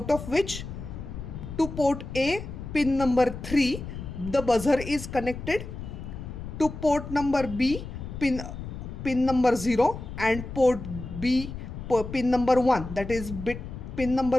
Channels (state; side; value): noise; left; rumble, 9 dB below the sound